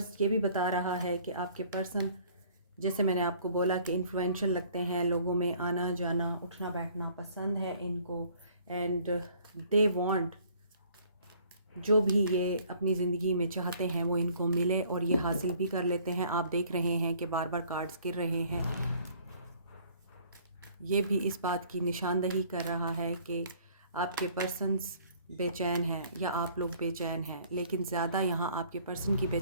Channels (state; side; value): inverted; both; correlation -0.56